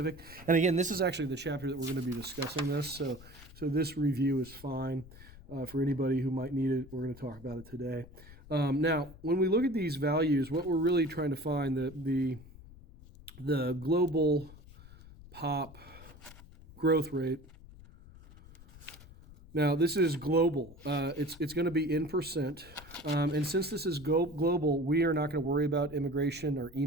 And again, this is actually the chapter that we're going to be discussing this. So this review is fine for anybody who might need it. We're going to talk about it today. Now, when we look at these values, what we're really trying to find, the global pop growth rate. Now, this is global. It's going to be in percent. And since this is global, we are not going to worry about immigration or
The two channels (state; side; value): noise; left; rumble, 19 dB below the sound